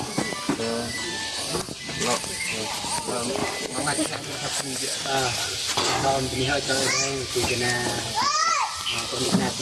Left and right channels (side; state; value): both; identical; correlation 1.00